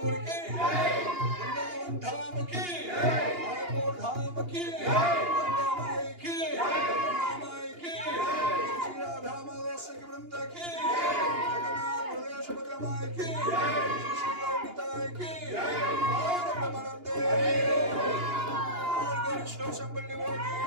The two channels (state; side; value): late; left; 2.8 ms